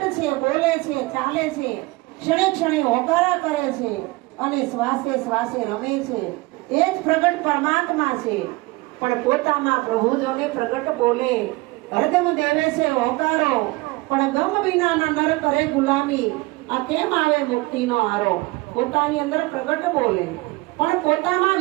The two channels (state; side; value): quieter; left; 22.6 dB